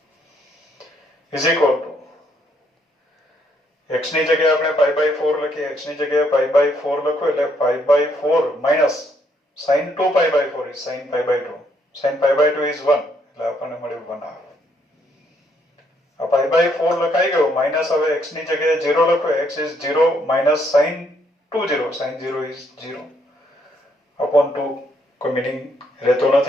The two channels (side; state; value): both; normal; correlation 0.71